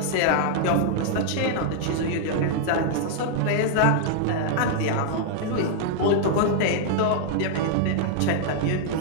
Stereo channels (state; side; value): different; both; correlation -0.01